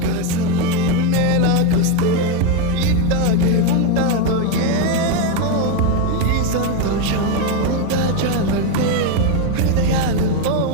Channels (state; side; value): different; both; correlation 0.03